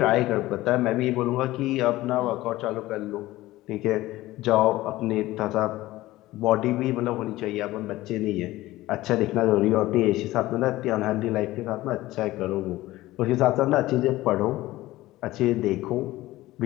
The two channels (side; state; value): right; quieter; 17.2 dB